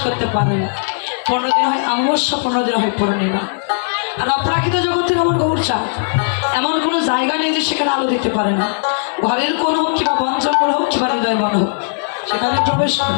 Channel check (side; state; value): right; silent; digital silence